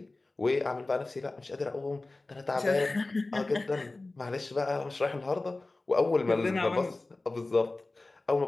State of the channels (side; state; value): right; quieter; 3.1 dB